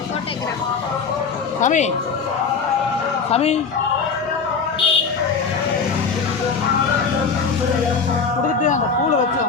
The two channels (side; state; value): right; quieter; 5.4 dB